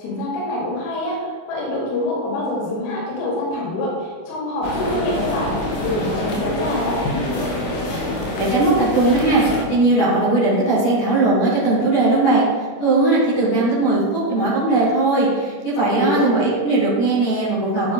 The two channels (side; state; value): right; late; 25 ms